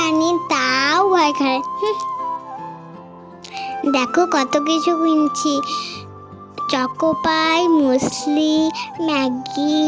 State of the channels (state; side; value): identical; both; correlation 1.00